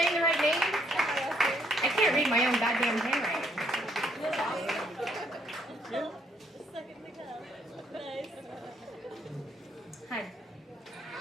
the right name? I can't read my own goddamn handwriting. Hi.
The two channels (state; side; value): normal; both; correlation 0.70